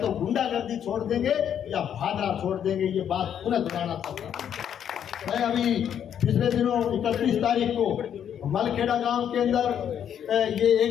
गुंडागर्दी छोड़ देंगे या भादरा छोड़ देंगे, ये बात पुनः दोहराना चाहता हूँ। मैं अभी पिछले दिनों 31 तारीख को मलखेड़ा गांव के अंदर ये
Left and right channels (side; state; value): right; quieter; 9.1 dB